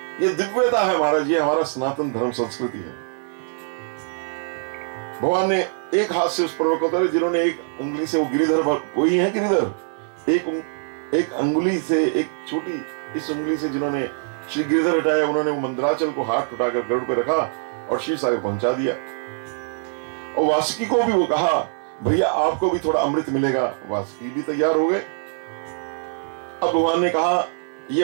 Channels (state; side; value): silent; left; digital silence